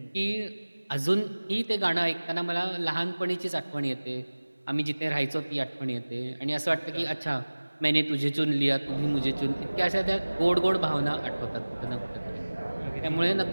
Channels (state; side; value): inverted; both; correlation -1.00